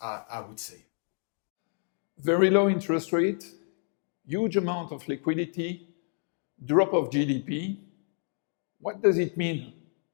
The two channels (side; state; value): right; silent; 58 dB below the other